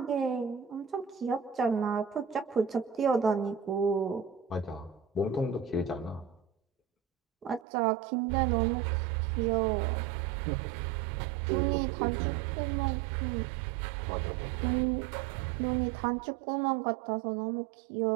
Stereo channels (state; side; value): drops out; left; at 7.7 s